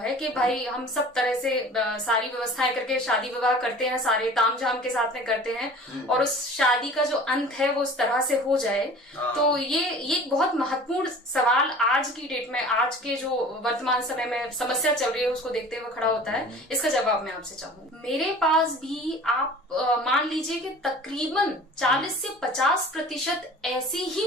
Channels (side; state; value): both; normal; correlation 0.43